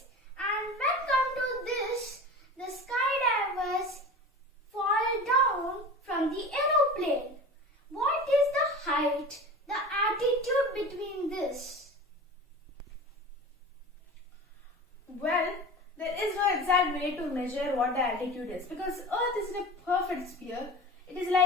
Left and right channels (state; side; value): normal; both; correlation 0.34